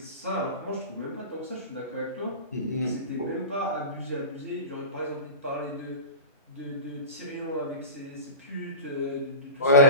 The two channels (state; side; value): inverted; both; correlation -0.30